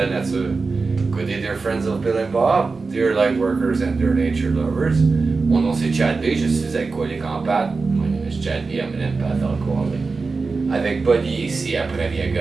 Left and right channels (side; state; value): left; quieter; 4.2 dB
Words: nature. Good day dear friends of Bill and Bob, dear light workers and dear nature lovers. Mon nom c'est Chad B, je suis alcoolique en pâte. My name is Chad B, I'm an empath alcoholic. Avec Buddy ici à